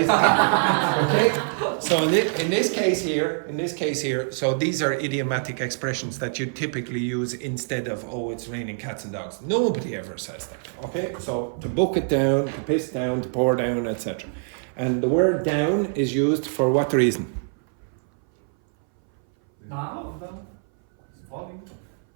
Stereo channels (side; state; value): left; silent; 60 dB below the other